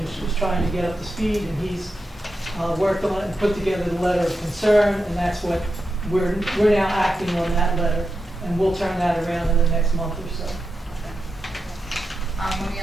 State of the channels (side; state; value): both; normal; correlation 0.88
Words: was trying to get up to speed. And he's worked on it and put together the letter of concern. And that's what we're now acting on, that letter. And we'll turn that around in the next month or so. Let me